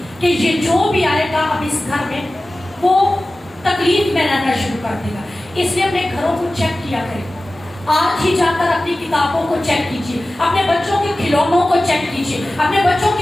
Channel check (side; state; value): both; normal; correlation 0.96